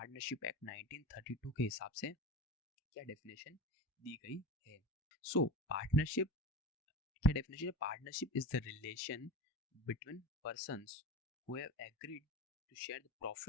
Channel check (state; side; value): normal; both; correlation 0.31